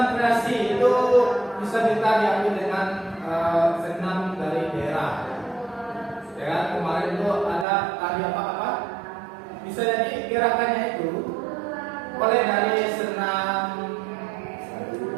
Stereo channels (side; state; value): left; drops out; at 7.7 s